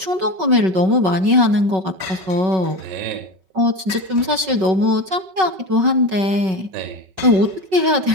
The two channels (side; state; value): left; late; 5.3 ms